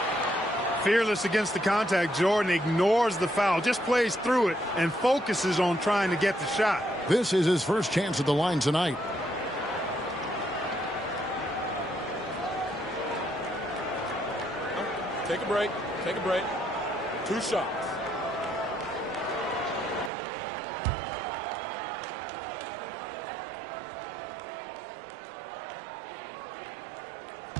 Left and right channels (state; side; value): drops out; left; at 20.1 s